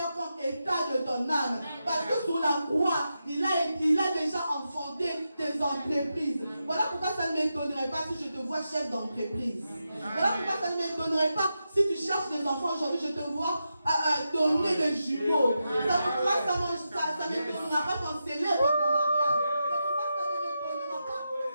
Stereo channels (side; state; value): both; inverted; correlation -0.88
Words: comme état de ton âme. Parce que sur la croix, il a déjà enfanté tes entreprises. Voilà pourquoi ça ne m'étonnerait pas si je te vois chef d'entreprise. Voilà pourquoi ça ne m'étonnerait pas si tu cherches des enfants aujourd'hui, je te vois donner des jumeaux. Ça ne m'étonnera pas quand célèbre ton mariage. Ça ne m'étonnera pas